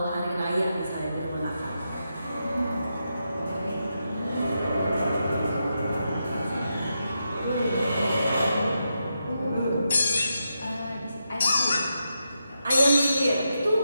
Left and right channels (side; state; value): both; inverted; correlation -0.86